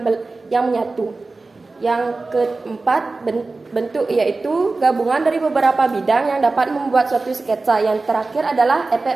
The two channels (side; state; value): left; quieter; 3.6 dB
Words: menyatu. Yang keempat, bentuk, yaitu gabungan dari beberapa bidang yang dapat membuat suatu sketsa. Yang terakhir adalah